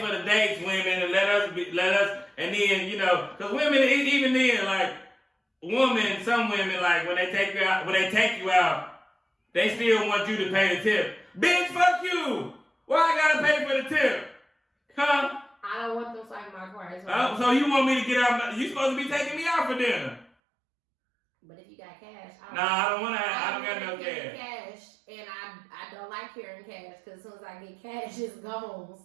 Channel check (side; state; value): left; drops out; at 20.3 s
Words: for the dates, women, and let us, and then, you know, because women, even then, like, some women, like, when they take you out, they still want you to pay the tip. Bitch, fuck you! Why I gotta pay for the tip? Huh? I don't want them like my car. So you want me to get out? You supposed to be taking me out for dinner. But if you got cash, I don't got no cash. And I don't like carrying cash because as soon as I get cash, it's gone.